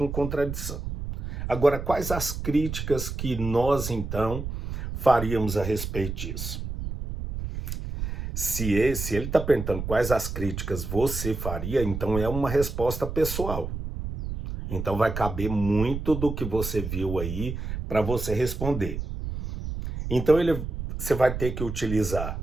contradição. Agora, quais as críticas que nós, então, faríamos a respeito disso? Se ele está perguntando quais as críticas você faria, então é uma resposta pessoal. Então vai caber muito do que você viu aí para você responder. Então você vai ter que utilizar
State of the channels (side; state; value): right; noise; rumble, 5 dB below the sound